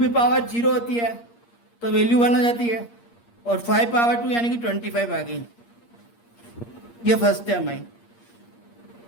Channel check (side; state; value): right; late; 8.5 ms